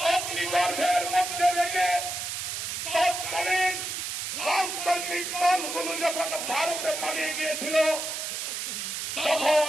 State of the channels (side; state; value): right; noise; hiss, 4 dB below the sound